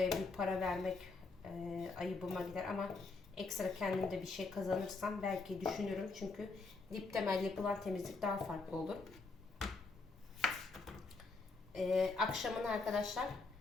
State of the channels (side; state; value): right; quieter; 3.9 dB